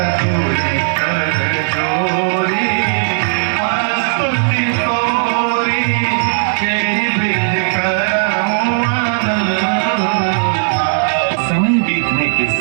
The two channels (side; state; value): left; silent; digital silence